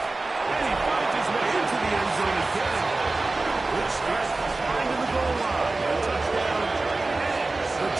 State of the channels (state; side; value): quieter; left; 3.3 dB